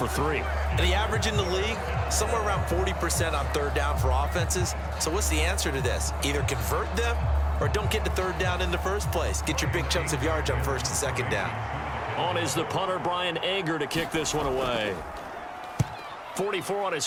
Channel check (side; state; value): both; identical; correlation 1.00